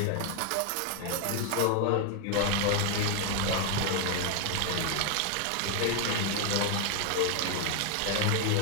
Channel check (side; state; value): both; different; correlation 0.01